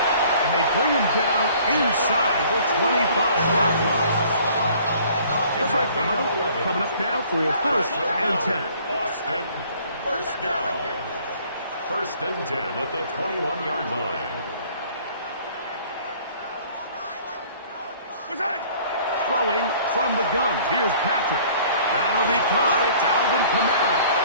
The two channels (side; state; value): both; inverted; correlation -0.54